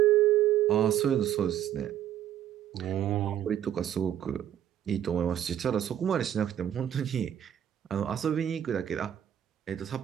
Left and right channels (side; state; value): left; quieter; 10.7 dB